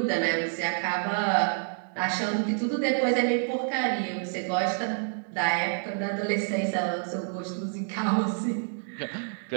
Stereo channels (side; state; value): left; silent; 59 dB below the other